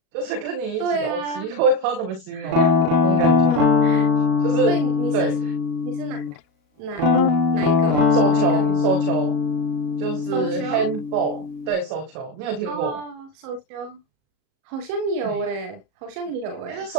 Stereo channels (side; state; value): left; late; 37 ms